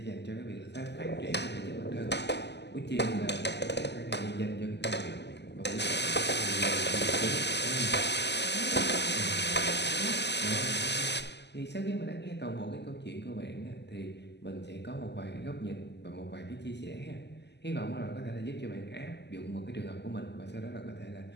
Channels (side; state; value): right; late; 0.50 ms